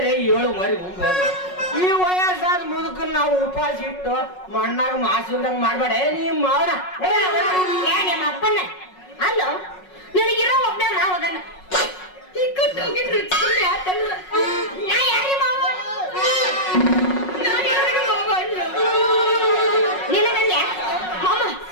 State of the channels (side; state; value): right; late; 5.4 ms